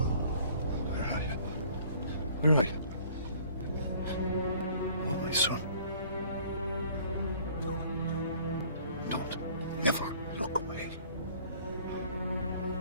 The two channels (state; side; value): inverted; both; correlation -0.54